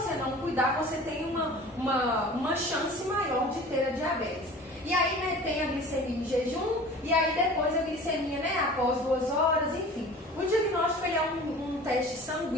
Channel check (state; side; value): normal; both; correlation 0.42